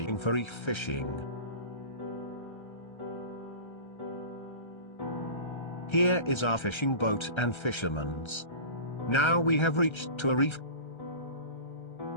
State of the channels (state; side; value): late; right; 1.3 ms